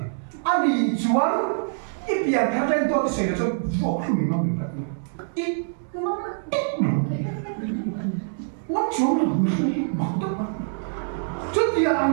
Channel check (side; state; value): left; silent; digital silence